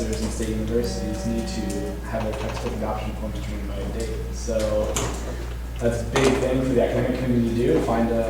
in state universities need to have their textbook adoption forms determined by a date. So that's a big thing for the academic community to do, to find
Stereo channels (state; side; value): identical; both; correlation 1.00